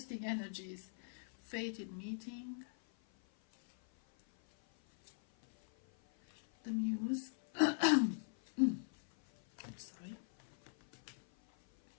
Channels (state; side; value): silent; right; 51 dB below the other